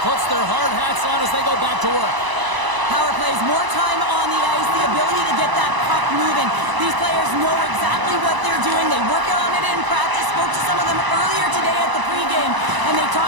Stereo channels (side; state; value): left; late; 1.0 ms